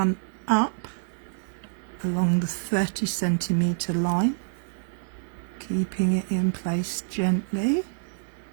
up along the 30 centimetre line, keeping it in place gently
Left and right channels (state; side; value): silent; left; digital silence